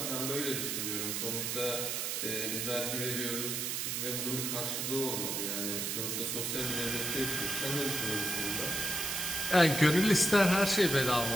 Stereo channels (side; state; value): right; noise; hiss, 1 dB below the sound